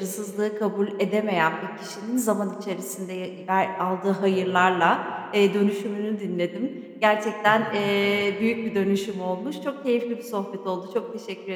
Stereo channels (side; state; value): both; identical; correlation 1.00